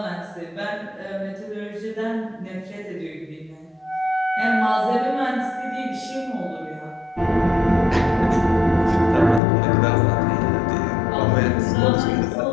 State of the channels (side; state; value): right; drops out; at 9.4 s